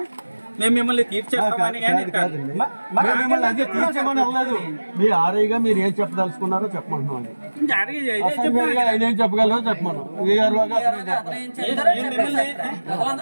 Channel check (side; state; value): both; inverted; correlation -1.00